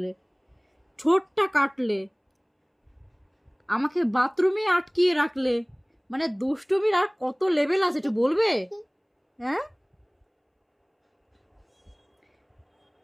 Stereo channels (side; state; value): both; identical; correlation 1.00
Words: ঠোঁটটা কাটলে, আমাকে বাথরুমে আটকিয়ে রাখলে। মানে দুষ্টুমির আর কত লেভেল আছে একটু বলবে? হ্যাঁ,